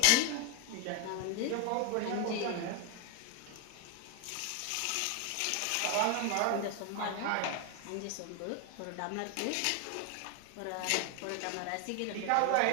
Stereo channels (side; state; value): both; different; correlation 0.01